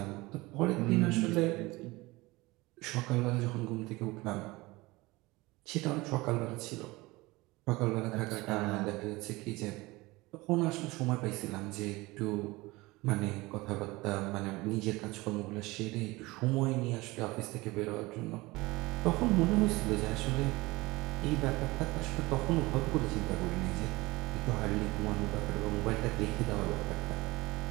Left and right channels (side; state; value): left; quieter; 21.6 dB